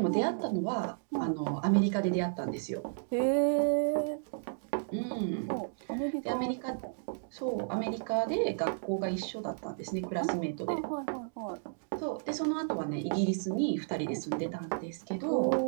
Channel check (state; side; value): silent; left; digital silence